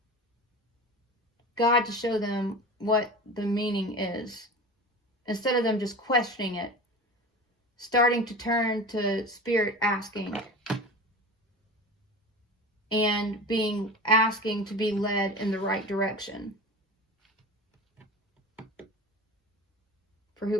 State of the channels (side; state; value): both; normal; correlation 0.32